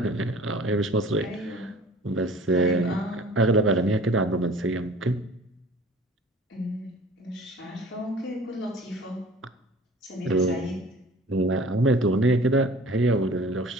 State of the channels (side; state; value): both; normal; correlation 0.46